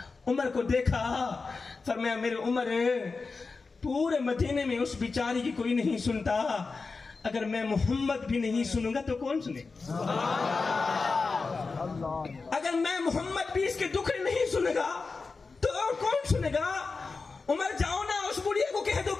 عمر کو دیکھا, فرمایا میرے عمر, پورے مدینے میں اس بیچاری کی کوئی نہیں سنتا, اگر میں محمد بھی نہیں سنوں گا تو کون سنے؟ اگر میں محمد بھی اس کے دکھ نہیں سنے گا تو اور کون سنے گا؟ عمر جاؤ نا اس بڑھیا کو کہہ دو,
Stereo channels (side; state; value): right; quieter; 4.3 dB